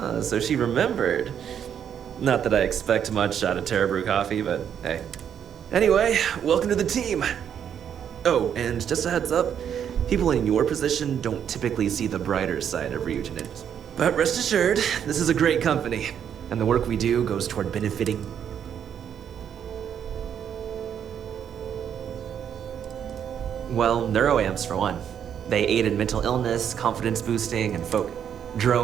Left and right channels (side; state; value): left; quieter; 8.7 dB